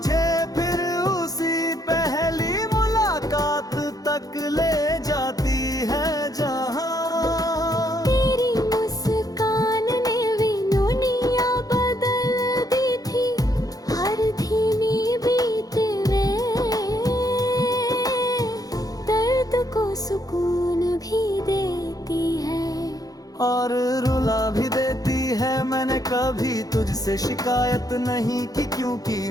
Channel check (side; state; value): right; late; 0.18 ms